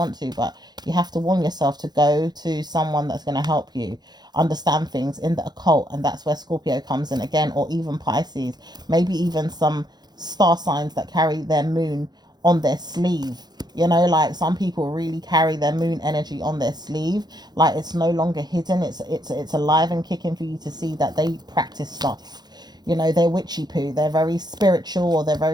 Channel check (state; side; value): late; left; 0.20 ms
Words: to, but you have to warn yourself to go to someone that's going to help you understand things in the occult. And that's where Scorpio comes in again, or even Pisces, maybe even some star signs that carry their moon on their sleeve. Like some people really carry their moon energy on their sleeve, like it's no longer hidden. It's alive and kicking for you to see that they practice stuff. They're witchy poo, they're very spiritual, or they're